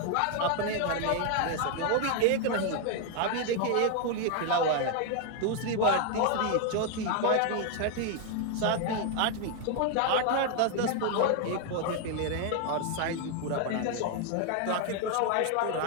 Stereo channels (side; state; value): both; different; correlation 0.00